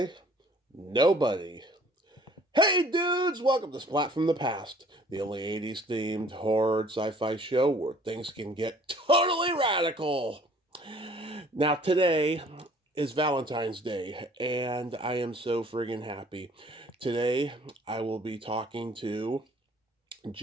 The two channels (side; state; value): both; normal; correlation 0.55